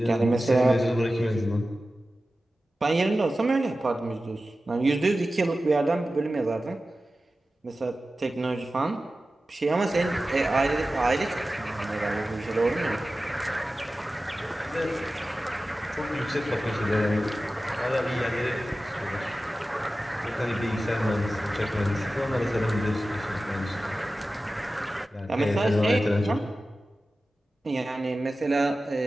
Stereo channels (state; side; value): normal; both; correlation 0.95